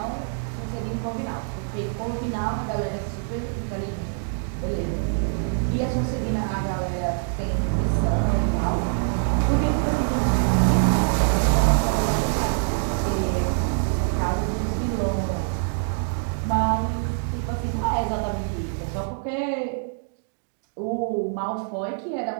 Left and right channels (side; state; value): left; silent; 62 dB below the other